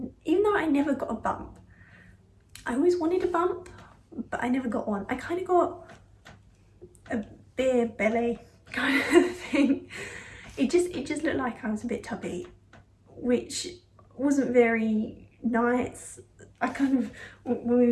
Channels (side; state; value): both; identical; correlation 1.00